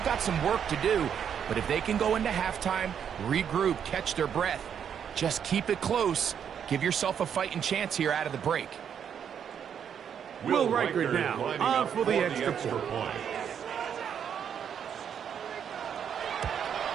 some work to do, but if they can go into halftime, regroup, catch their breath, just keep it close, give yourself a fighting chance here out of the break. Will Riker now on for the extra point.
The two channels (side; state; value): left; quieter; 8.2 dB